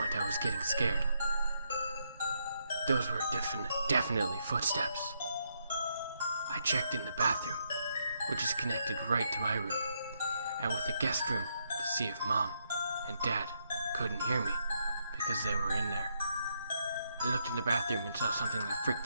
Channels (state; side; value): inverted; both; correlation -0.77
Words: I was getting scared. Those were definitely footsteps. I checked in the bathroom, which is connected right to my room, and with the guest room to see if Mom and Dad couldn't hear me because they were in there. I looked in the bathroom and saw something that freaked